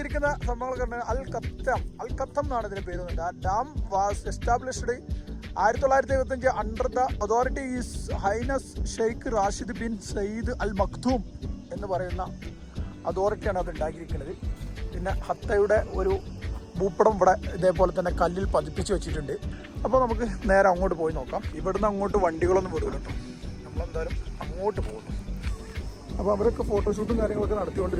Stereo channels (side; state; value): both; identical; correlation 1.00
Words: സംഭവങ്ങളൊക്കെ അൽ ഖത്തം എന്നാണ് ഇതിന്റെ പേര്. Dam was established 1975 under the authority his highness Sheikh Rashid bin Saeed Al Maktoum എന്ന് പറയുന്ന അതോറിറ്റിയാണ് അത് ഉണ്ടാക്കിയിരിക്കുന്നത്. പിന്നെ ഹത്തയുടെ ഒരു ഭൂപടം ഇവിടെ ഇതേപോലെ തന്നെ കല്ലിൽ പതിപ്പിച്ച് വെച്ചിട്ടുണ്ട്. അപ്പോൾ നമുക്ക് നേരെ അങ്ങോട്ട് പോയി നോക്കാം. ഇവിടുന്ന് അങ്ങോട്ട് വണ്ടികളൊന്നും വിടില്ല കേട്ടോ, നമ്മളെന്തായാലും അങ്ങോട്ട് പോകുന്നു. അപ്പോൾ അവരൊക്കെ ഫോട്ടോഷൂട്ടും കാര്യങ്ങളൊക്കെ